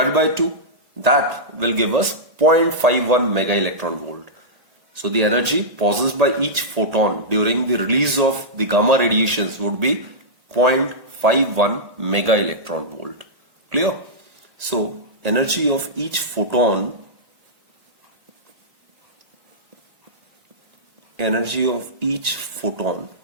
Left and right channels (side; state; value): left; late; 1.5 ms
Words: by 2. That will give us 0.51 mega electron volt. So the energy possessed by each photon during the release of the gamma radiations would be 0.51 mega electron volt. Clear? So energy of each photon